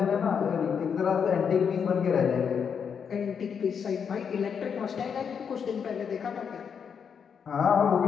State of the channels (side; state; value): right; quieter; 7.0 dB